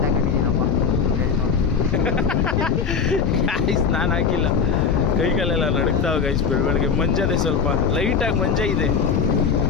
ಹಾಕೊಂಡಿದ್ದೀನಪ್ಪ ಗೈಸ್, ನಾನು ಹಾಕಿಲ್ಲ. ಕೈಕಾಲೆಲ್ಲ ನಡುಕ್ತಾವೆ ಗೈಸ್ ಬೆಳಗ್ಗೆ. ಮಂಜದೆ ಸ್ವಲ್ಪ ಲೈಟಾಗಿ ಮಂಜ ಇದೆ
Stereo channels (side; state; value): right; quieter; 5.9 dB